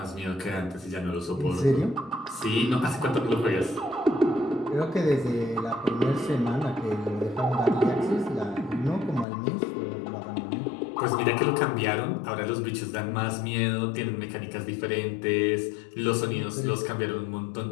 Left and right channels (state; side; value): drops out; right; at 9.2 s